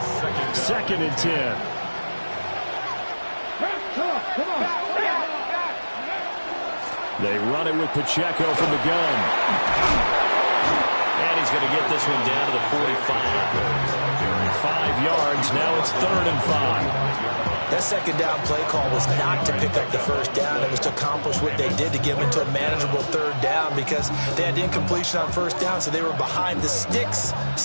2nd and 10. Come on. They run it with Pacheco from the gun. And he's going to get this one down to the 45. 5 yards. Now it's 3rd and 5. That second down play call was not to pick up the first down. It was to accomplish what they did to get them into a manageable 3rd down because they had incompletion on first down, so they were behind the sticks,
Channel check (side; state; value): both; inverted; correlation -1.00